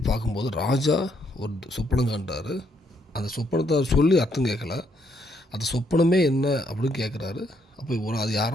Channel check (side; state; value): both; normal; correlation 0.73